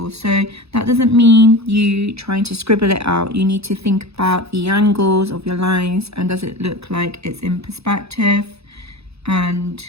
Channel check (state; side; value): late; left; 0.79 ms